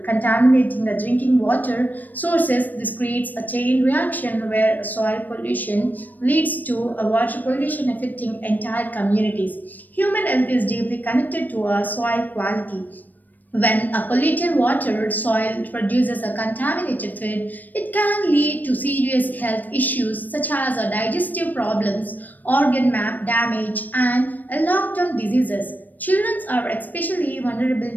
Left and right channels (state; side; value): late; right; 0.085 ms